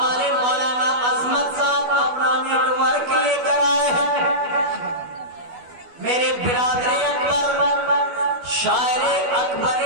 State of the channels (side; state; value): left; late; 12 ms